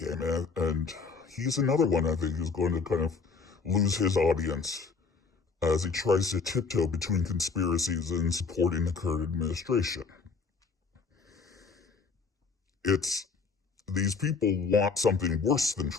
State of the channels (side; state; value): right; quieter; 4.8 dB